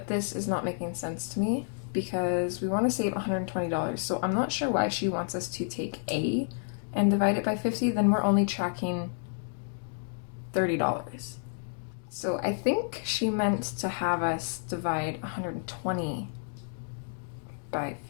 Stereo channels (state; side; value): silent; right; digital silence